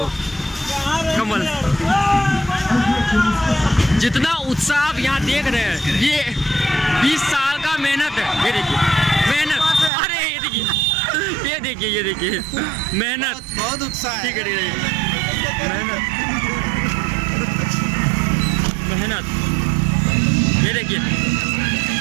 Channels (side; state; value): left; drops out; at 9.9 s